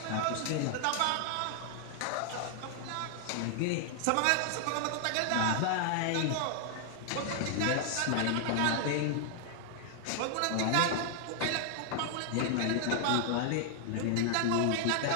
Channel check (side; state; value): both; different; correlation 0.00